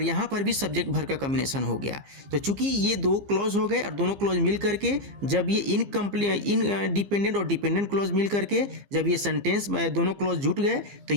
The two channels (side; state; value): left; late; 15 ms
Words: यहाँ पर भी सब्जेक्ट वर्ब का कॉम्बिनेशन हो गया। तो चूंकि ये दो क्लॉज हो गए और दोनों क्लॉज मिल करके जब ये इनडिपेंडेंट और डिपेंडेंट क्लॉज मिल करके जब ये सेंटेंस दोनों क्लॉज जुट गए तो